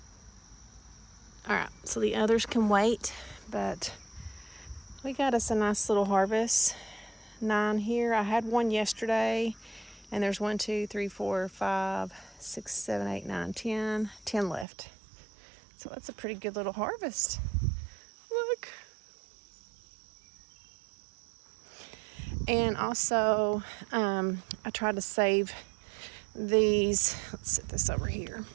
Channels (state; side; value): drops out; left; at 14.7 s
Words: All right, so the others can wait, but we got us a nice little harvest. 9 here. I had one yesterday, and there's 1, 2, 3, 4, 5, 6, 7, 8, 9, 10. 10 left. So that's a pretty good little harvest. Look. And also, I tried to save these. Let's set this over here.